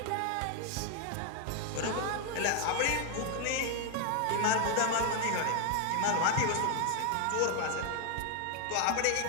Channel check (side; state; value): both; different; correlation 0.01